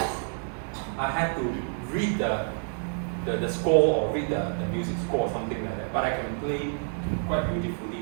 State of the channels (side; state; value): left; silent; 59 dB below the other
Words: I have to read the score or read the music score or something like that. But I can play quite